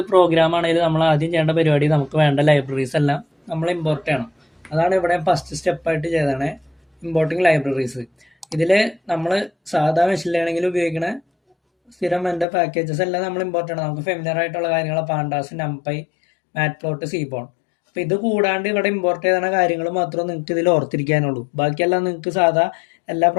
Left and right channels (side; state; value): right; drops out; at 12.5 s